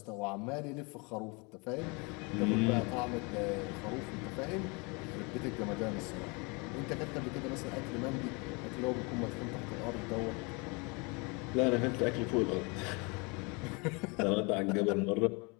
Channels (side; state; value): right; quieter; 29.8 dB